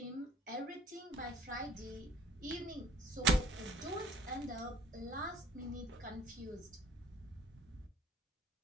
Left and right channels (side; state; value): both; normal; correlation 0.52